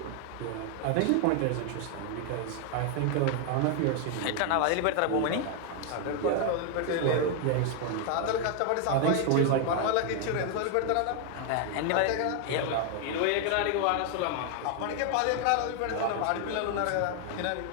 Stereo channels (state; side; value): different; both; correlation 0.00